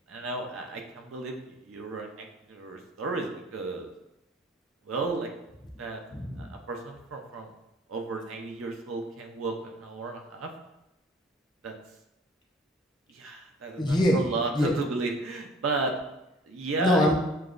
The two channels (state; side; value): normal; both; correlation 0.51